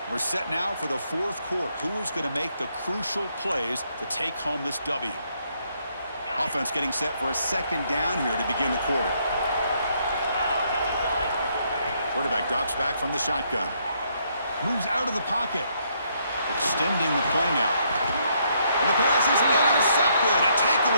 We're set now for the fourth quarter. Who is going to make the crucial plays to take home this W? Offense getting set for a second down here to begin the quarter. Quarterback drops back from the shotgun. Moves out of the pocket. Extending the play now. And the pass is intercepted. A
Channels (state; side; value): inverted; both; correlation -0.72